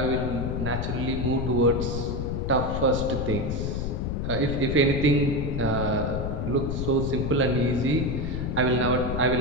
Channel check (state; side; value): noise; left; rumble, 2 dB below the sound